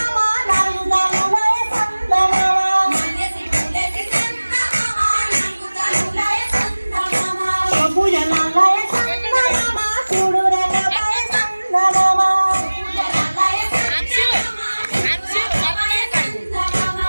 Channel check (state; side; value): inverted; both; correlation -1.00